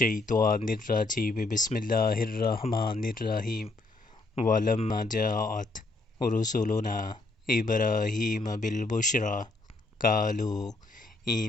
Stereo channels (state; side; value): quieter; right; 3.1 dB